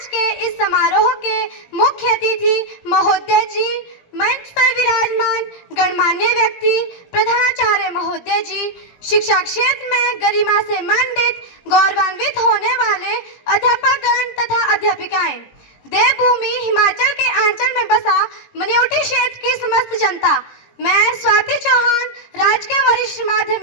के इस समारोह के मुख्य अतिथि महोदय जी, मंच पर विराजमान गणमान्य व्यक्ति, प्रधानाचार्य महोदय जी, शिक्षा क्षेत्र में गरिमा से मंडित गौरवान्वित होने वाले अध्यापकगण तथा अध्यापिकाएं, देवभूमि हिमाचल के आंचल में बसा मनियोटी क्षेत्र की समस्त जनता, मैं स्वाति चौहान राजकीय वरिष्ठ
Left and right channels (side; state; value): right; late; 18 ms